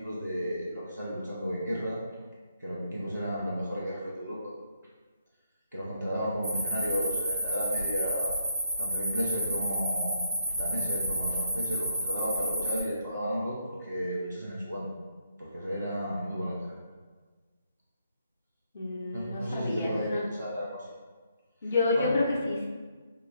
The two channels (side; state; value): both; inverted; correlation -0.75